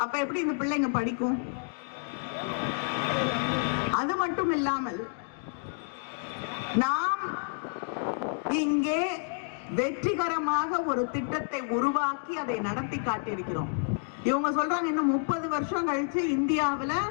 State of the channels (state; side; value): silent; right; 58 dB below the other